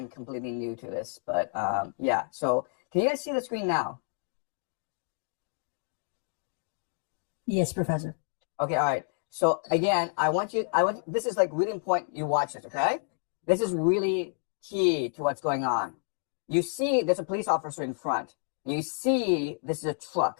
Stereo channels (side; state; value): right; silent; 58 dB below the other